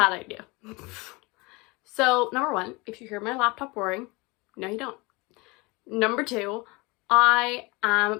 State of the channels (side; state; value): right; quieter; 25.4 dB